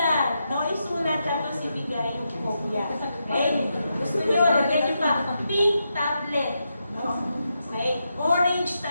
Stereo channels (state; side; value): inverted; both; correlation -0.85